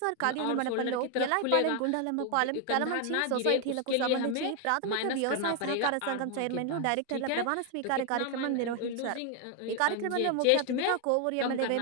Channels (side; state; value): both; different; correlation 0.00